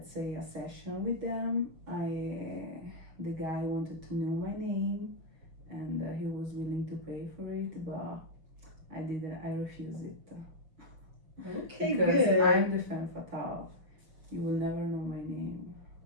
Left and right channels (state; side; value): late; left; 5.8 ms